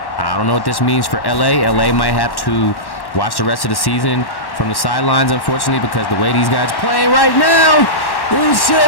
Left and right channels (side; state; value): right; late; 1.1 ms